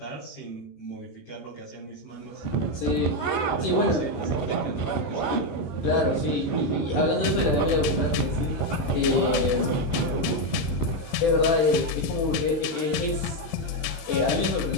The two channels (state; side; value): late; right; 18 ms